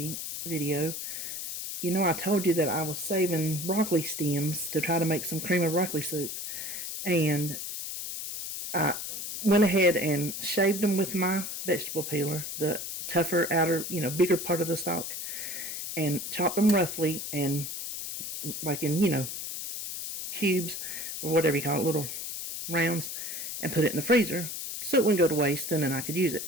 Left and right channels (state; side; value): noise; left; hiss, 6 dB below the sound